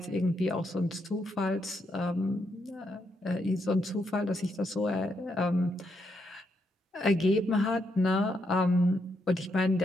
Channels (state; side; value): normal; both; correlation 0.79